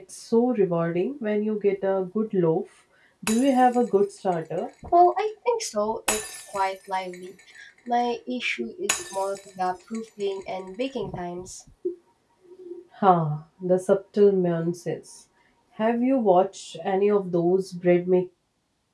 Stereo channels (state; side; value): identical; both; correlation 1.00